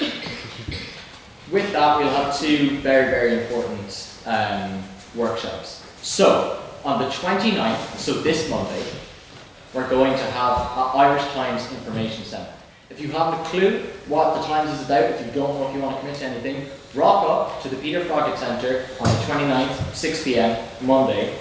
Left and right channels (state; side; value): identical; both; correlation 1.00